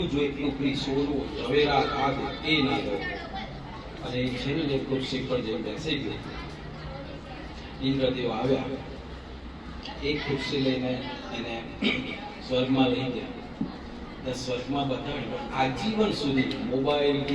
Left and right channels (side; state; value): both; identical; correlation 1.00